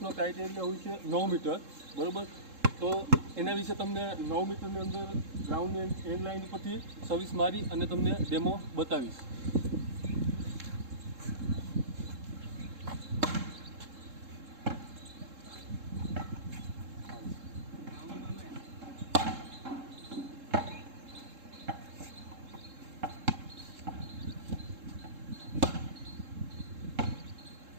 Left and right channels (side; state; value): left; late; 3.7 ms